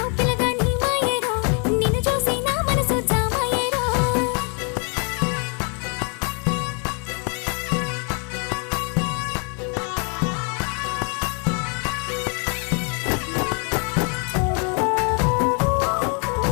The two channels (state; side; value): quieter; right; 37.5 dB